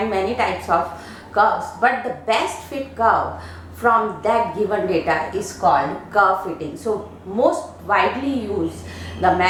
many types of curves, but the best fit curve from that given data is called curve fitting. So most widely used the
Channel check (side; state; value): both; identical; correlation 1.00